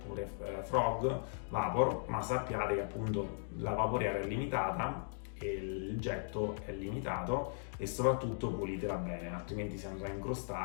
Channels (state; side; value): silent; right; digital silence